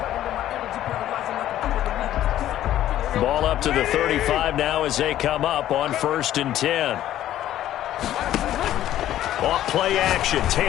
Ball up to the 35 now as they come up on 1st and 10. Off play action,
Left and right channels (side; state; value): right; quieter; 12.6 dB